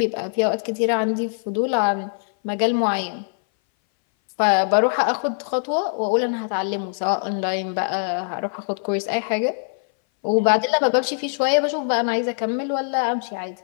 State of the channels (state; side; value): silent; right; 60 dB below the other